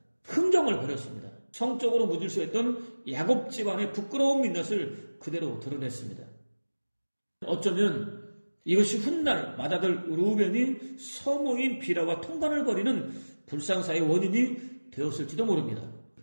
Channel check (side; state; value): both; inverted; correlation -1.00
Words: 흥정을 벌였습니다. 성적으로 무질서했던 야곱 집안의 부끄러운 민낯을 그대로 드러냈습니다. 어쩌면 이것이 훗날 맏아들 르우벤이 서모인 비라와 통관을 벌이는 불상사의 원인이 되었을지도 모릅니다.